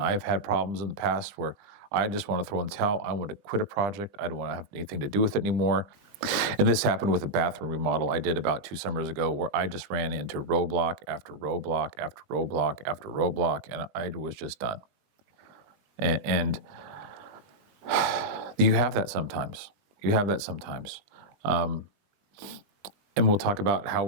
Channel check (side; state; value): left; late; 20 ms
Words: I've had problems in the past where I just want to throw in the towel. I want to quit a project. I don't want to have anything to do with it anymore. And this happened with a bathroom remodel I did about 2 summers ago, where I just ran into roadblock after roadblock after roadblock after roadblock, and I was just done. And you have that sometimes. You have that sometimes. And we'll talk about how